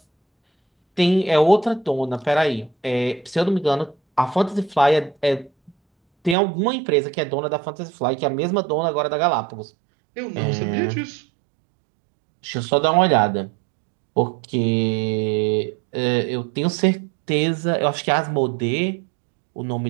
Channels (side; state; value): left; drops out; at 6.4 s